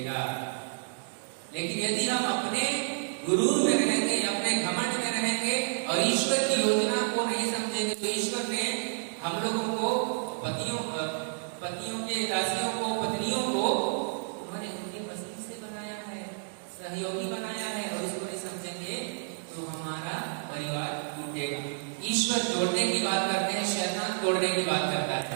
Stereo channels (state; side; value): silent; left; digital silence